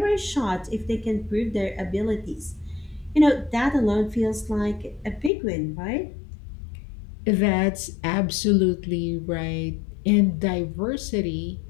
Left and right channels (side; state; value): right; drops out; at 5.3 s